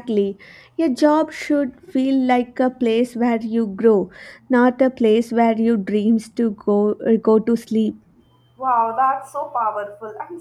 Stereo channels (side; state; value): both; identical; correlation 1.00